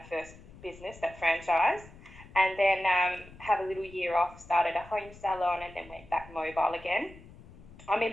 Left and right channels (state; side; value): noise; left; rumble, 20 dB below the sound